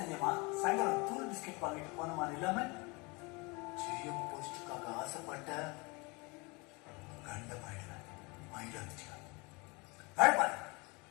சாயங்காலம் தூள் பிஸ்கெட் வாங்கிட்டு போனமா இல்லாம ஜிஎம் போஸ்டுக்காக ஆசைப்பட்ட கண்டமாயிடுவேன். மைண்ட் வந்துச்சு வேலை பாரு.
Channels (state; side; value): quieter; right; 27.6 dB